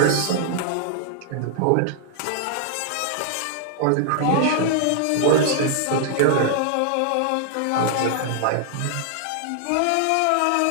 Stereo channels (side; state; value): both; different; correlation -0.01